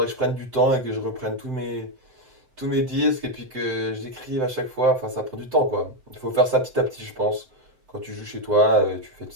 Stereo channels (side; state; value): left; late; 7.8 ms